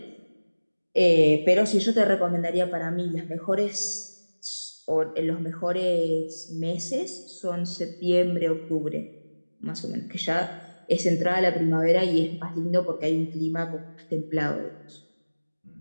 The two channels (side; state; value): both; inverted; correlation -1.00